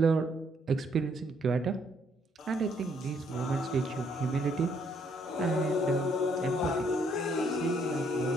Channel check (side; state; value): both; normal; correlation 0.69